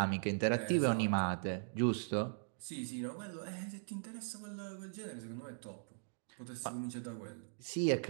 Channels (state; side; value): silent; left; digital silence